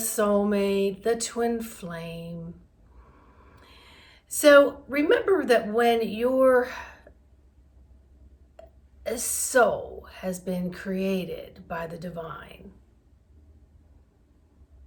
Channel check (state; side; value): identical; both; correlation 1.00